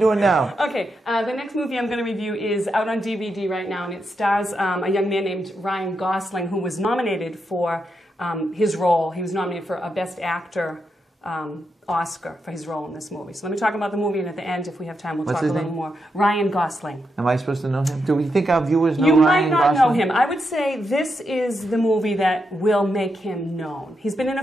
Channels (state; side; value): normal; both; correlation 0.84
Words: now? Okay, the next movie I'm going to review is out on DVD right now, and it stars a young man named Ryan Gosling, who was nominated for his role. He was nominated for a Best Actor Oscar for his role in this movie. So let me talk about the movie, and at the end, if we have time, we'll talk a little more. Ryan Gosling. Am I supposed to know him? Do we think our viewers know Ryan Gosling? Ryan You might not Gosling? know him. I would say this is the movie that will make him known. He's been in a